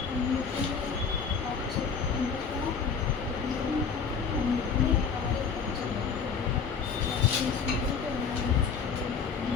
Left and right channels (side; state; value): right; quieter; 6.0 dB